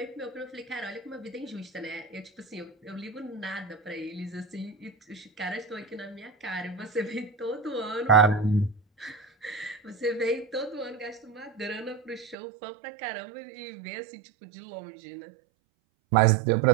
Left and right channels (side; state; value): left; drops out; at 12.4 s